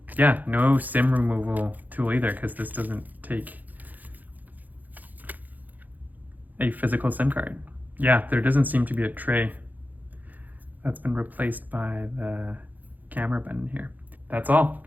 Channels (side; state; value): left; late; 0.083 ms